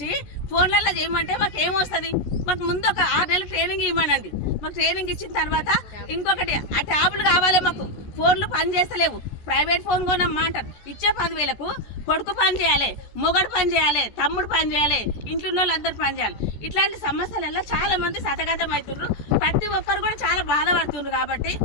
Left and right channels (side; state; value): right; late; 14 ms